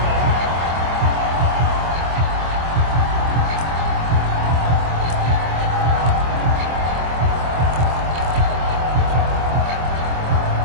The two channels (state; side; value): late; left; 25 ms